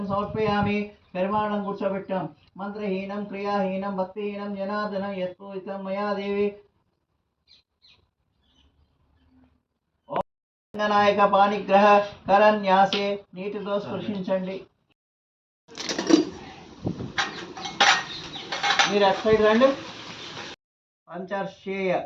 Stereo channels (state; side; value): identical; both; correlation 1.00